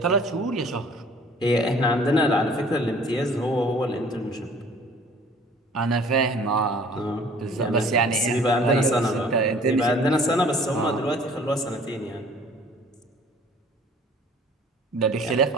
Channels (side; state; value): both; normal; correlation 0.52